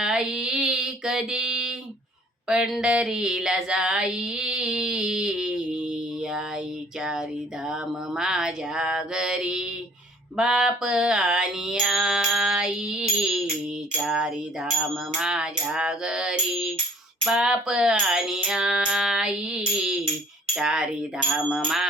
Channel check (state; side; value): normal; both; correlation 0.55